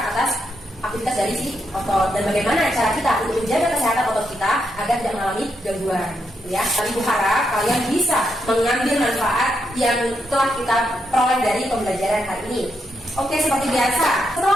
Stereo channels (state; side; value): normal; both; correlation 0.81